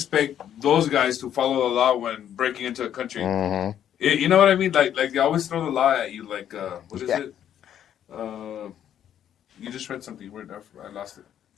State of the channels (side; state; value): right; quieter; 10.1 dB